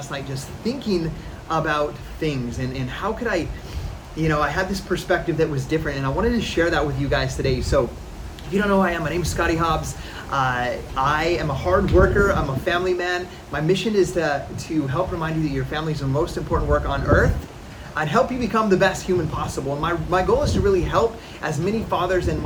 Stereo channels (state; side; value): identical; both; correlation 1.00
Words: night just thinking about things and how could I had this perspective that was different, and I wanted to share that with you guys today. So if you don't know who I am, my name is Scotty Hobbs. I am a hard worker. I'm a family man. My mission is to help remind you that your family is the most important work on earth. I'd help you become the best human possible. And my goal is to really help as many fathers and